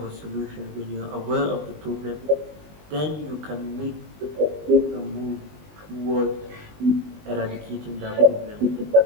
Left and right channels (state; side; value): late; left; 20 ms